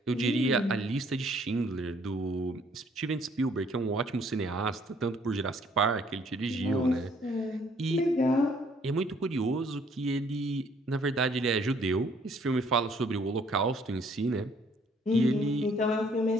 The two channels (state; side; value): normal; both; correlation 0.63